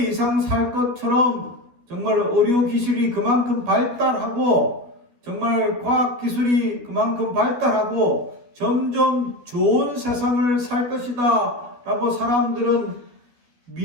이상 살 것처럼 정말 의료기술이 그만큼 발달하고, 정말 과학기술이 그만큼 발달하고 점점 좋은 세상을 살 것이다 라고 사람들은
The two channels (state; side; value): late; left; 12 ms